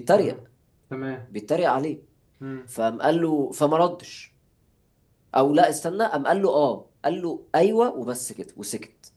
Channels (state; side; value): identical; both; correlation 1.00